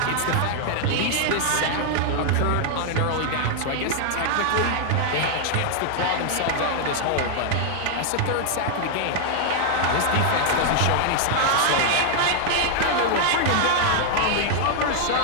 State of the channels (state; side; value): different; both; correlation 0.00